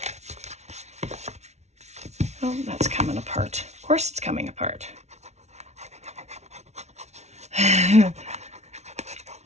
Oh, that's coming apart. Of course it's coming apart.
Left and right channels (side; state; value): left; late; 0.32 ms